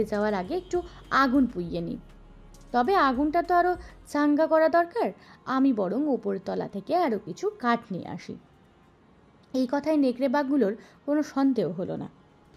যাওয়ার আগে একটু আগুন পুইয়ে নি। তবে আগুনটা তো আরো চাঙ্গা করা দরকার, আমি বরং ওপর তলা থেকে আরো কিছু কাঠ নিয়ে আসি। এই কথায় নেকড়ে বাঘগুলোর কোনো সন্দেহ হলো না।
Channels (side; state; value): both; identical; correlation 1.00